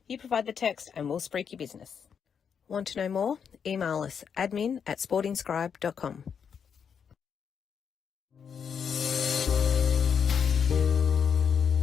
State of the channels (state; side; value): quieter; right; 7.1 dB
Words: You provide the text and we'll spruik your business. Want to know more? Email us admin@sportingscribe.com.